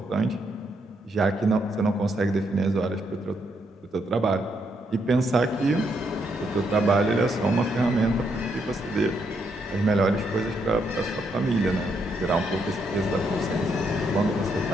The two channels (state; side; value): normal; both; correlation 0.77